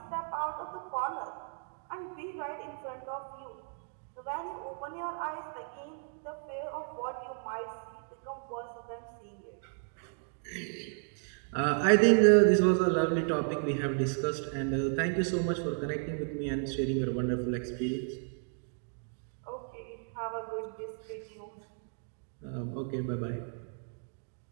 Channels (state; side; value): silent; left; 55 dB below the other